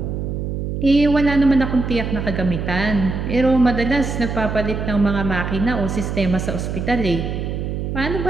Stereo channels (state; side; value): noise; right; hum, 3 dB below the sound